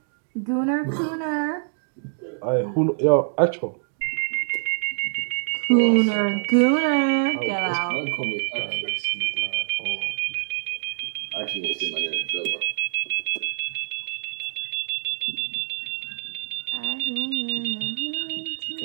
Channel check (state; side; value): silent; left; digital silence